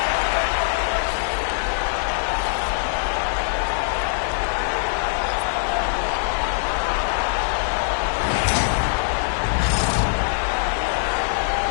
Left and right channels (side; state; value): right; silent; digital silence